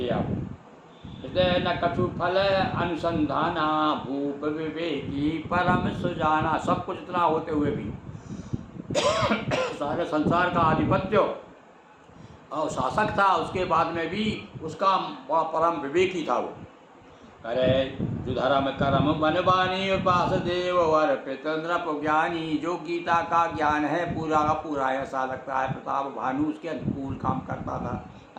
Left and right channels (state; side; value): identical; both; correlation 1.00